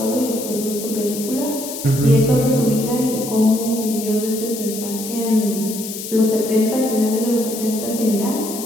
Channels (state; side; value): noise; left; hiss, 9 dB below the sound